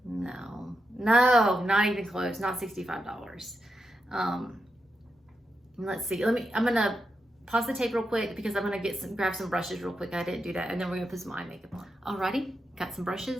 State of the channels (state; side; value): normal; both; correlation 0.85